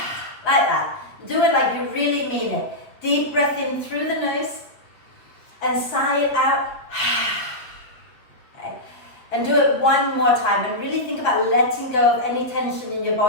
that. Do it like you really mean it. Deep breath in through the nose. And sigh it out. And do it one more time, and really think about letting go of any tension in your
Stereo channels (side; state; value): right; late; 7.8 ms